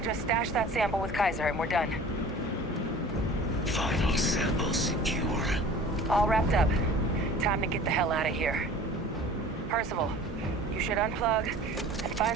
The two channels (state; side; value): normal; both; correlation 0.43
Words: stash that sample with Kaiser and we're done. Final sample secure. All wrapped up. Time to get the hell out of here. Percival, you should unplug And